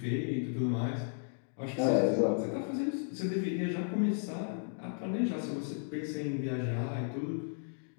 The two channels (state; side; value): silent; right; digital silence